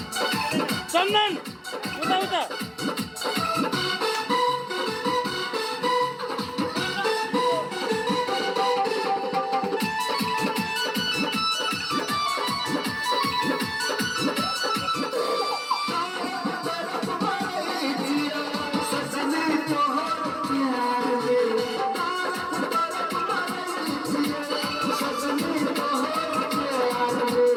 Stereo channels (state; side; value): identical; both; correlation 1.00